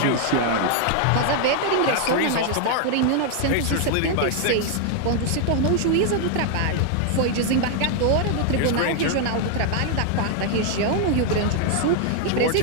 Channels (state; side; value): different; both; correlation 0.00